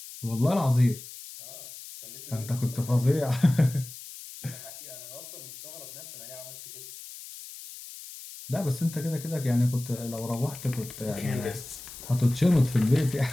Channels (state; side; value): noise; left; hiss, 14 dB below the sound